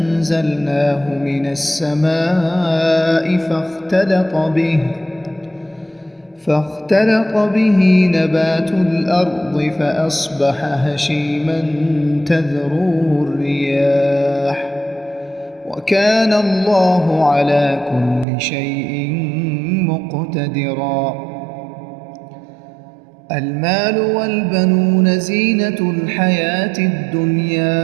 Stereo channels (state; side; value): drops out; left; at 18.2 s